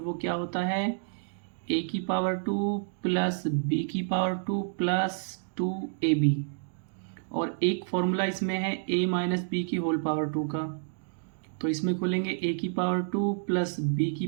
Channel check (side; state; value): left; silent; digital silence